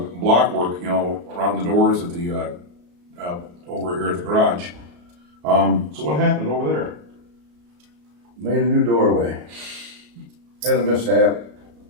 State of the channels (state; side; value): late; left; 34 ms